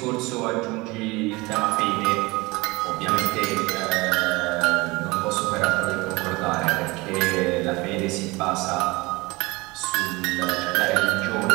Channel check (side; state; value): left; quieter; 23.2 dB